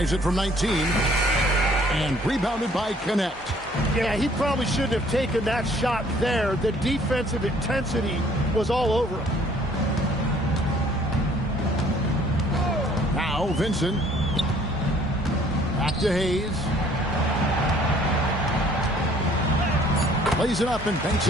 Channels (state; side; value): normal; both; correlation 0.58